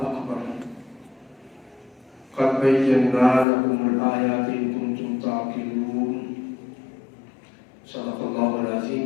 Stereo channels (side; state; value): right; drops out; at 3.5 s